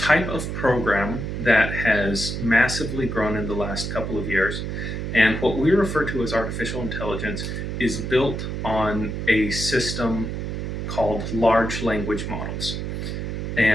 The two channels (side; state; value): right; noise; hum, 4 dB below the sound